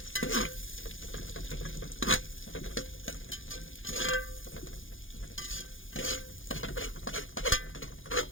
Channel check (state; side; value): late; right; 0.58 ms